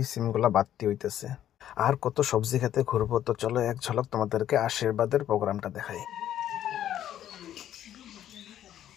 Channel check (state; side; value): quieter; right; 11.3 dB